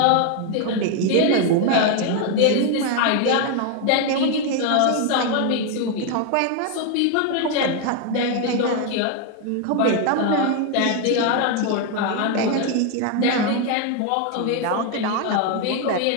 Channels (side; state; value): both; different; correlation 0.01